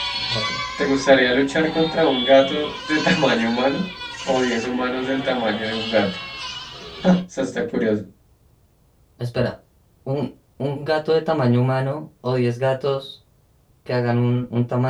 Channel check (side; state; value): both; identical; correlation 1.00